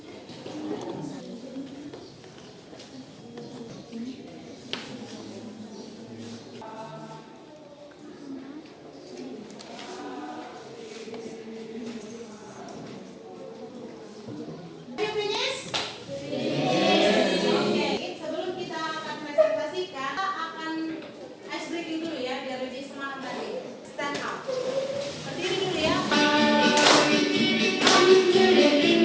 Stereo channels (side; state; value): both; identical; correlation 1.00